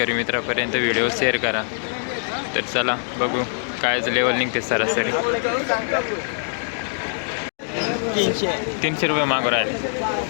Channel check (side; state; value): right; silent; digital silence